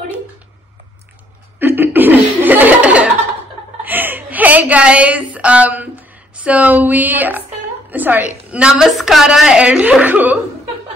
Hey guys, so Namaskara Elrigu.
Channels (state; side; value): normal; both; correlation 0.65